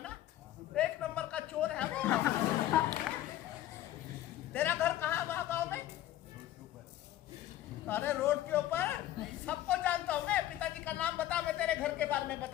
ना? 1 नंबर का चोर है वो। तेरा घर कहाँ है वहाँ गाँव में? अरे रोड के ऊपर, सबको जानता हूँ मैं। पिताजी का नाम बता, मैं तेरे घर के बारे में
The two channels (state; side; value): quieter; right; 13.6 dB